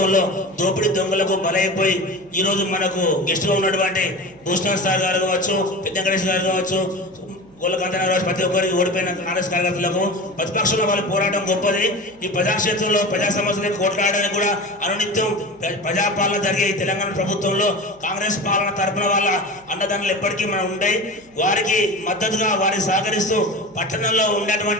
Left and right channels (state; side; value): noise; right; hum, 29 dB below the sound